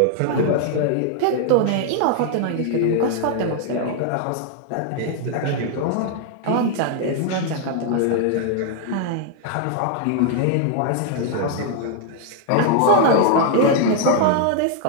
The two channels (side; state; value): both; different; correlation 0.00